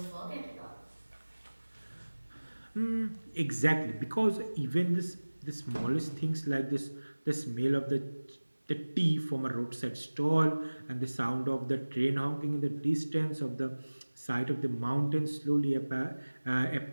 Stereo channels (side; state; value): both; inverted; correlation -1.00